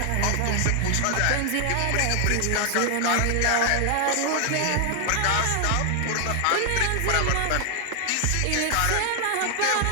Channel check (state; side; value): different; both; correlation 0.00